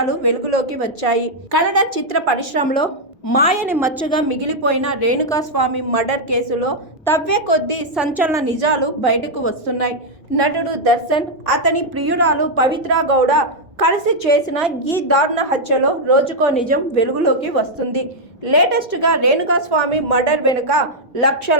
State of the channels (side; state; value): both; normal; correlation -0.03